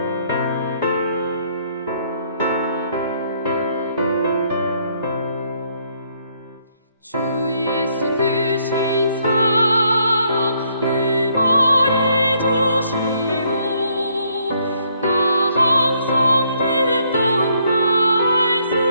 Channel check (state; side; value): inverted; both; correlation -0.69